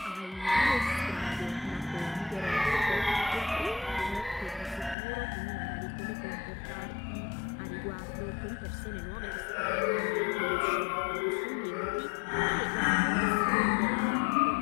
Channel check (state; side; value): drops out; right; at 5.0 s